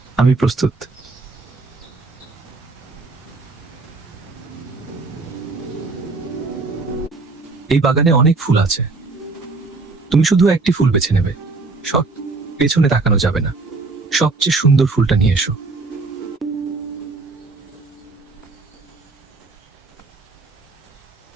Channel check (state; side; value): quieter; left; 3.7 dB